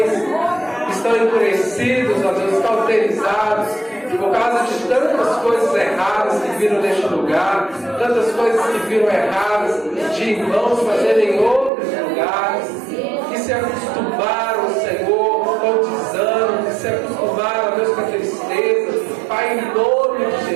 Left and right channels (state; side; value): drops out; left; at 11.7 s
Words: que estão endurecidos, ó Deus, cauterizados, por causa de tantas coisas erradas que viram neste lugar, tantas coisas que viram erradas de irmãos fazerem em outros lugares, que se acostumaram, Senhor, com o desânimo, que se acostumaram, ó Deus, com a tristeza. Pai, em nome de